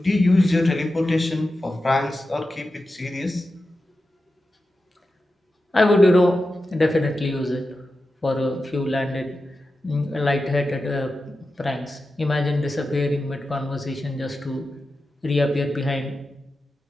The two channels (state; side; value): normal; both; correlation 0.92